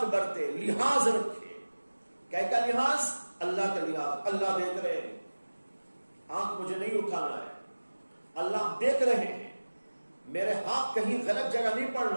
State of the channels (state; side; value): inverted; both; correlation -1.00